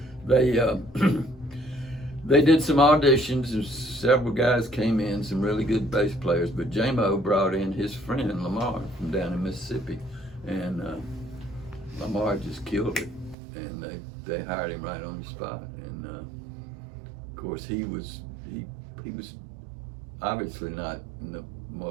they did some auditions, and several guys came in, some really good bass players, but J-Mo brought in his friend Lamar from down in Mississippi, and Lamar just killed it, and they hired him right on the spot. And of course he was obviously not in the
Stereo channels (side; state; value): left; drops out; at 13.4 s